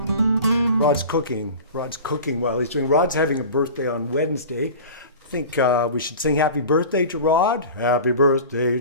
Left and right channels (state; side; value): inverted; both; correlation -0.36